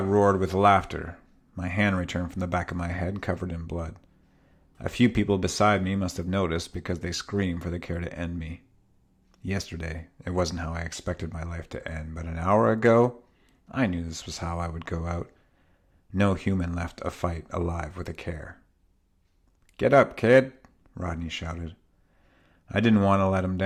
roared with laughter. My hand returned from the back of my head covered in blood. A few people beside me must have noticed because they screamed for the CAIR to end me. Yesterday, it wasn't how I expected my life to end, but an hour ago, I knew this was how I would go out. No human left a fight alive with a CAIR. "Get up, kid," Rodney shouted. I didn't want to let him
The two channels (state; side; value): identical; both; correlation 1.00